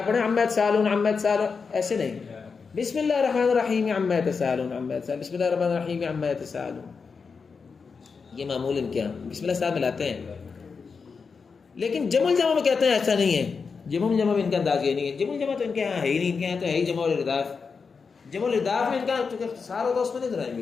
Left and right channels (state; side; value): quieter; right; 5.2 dB